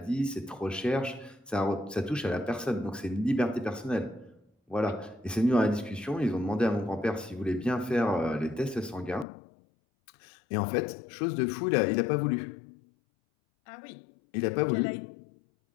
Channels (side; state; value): right; drops out; at 9.2 s